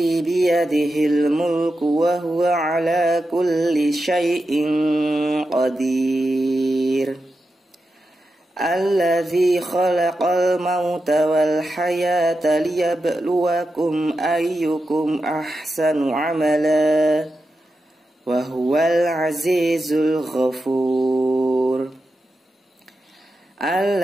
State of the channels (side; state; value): both; normal; correlation 0.89